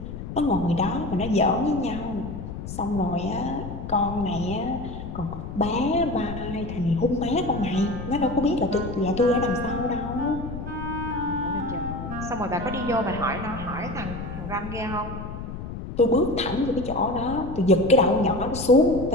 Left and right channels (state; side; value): noise; left; rumble, 8 dB below the sound